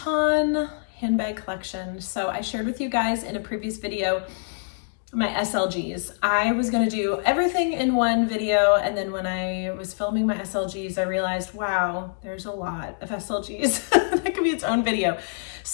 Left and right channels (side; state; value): right; silent; digital silence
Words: handbag collection. So I shared with you guys in a previous video my SLGs. I was going to do everything in one video, and then when I was filming my SLGs, I realized, wow, there's a lot of SLGs. That could be its own video.